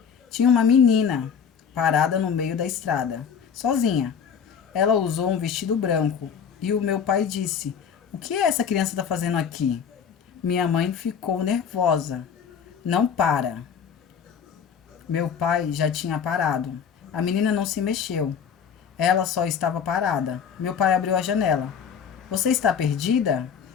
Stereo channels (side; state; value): right; quieter; 7.2 dB